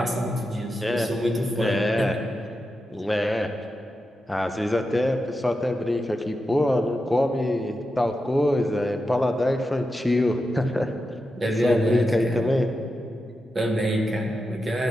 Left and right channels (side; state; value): both; normal; correlation 0.89